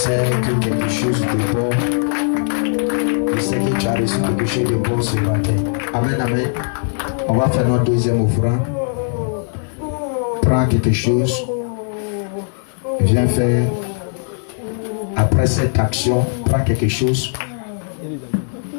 que quelque chose de bon. Je sais que tu as reçu quelque chose de bon ce matin. Amen, amen. On va faire notre deuxième offrande. Prends quelque chose. Viens faire. Après cette action, prends quelque chose.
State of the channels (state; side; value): silent; right; digital silence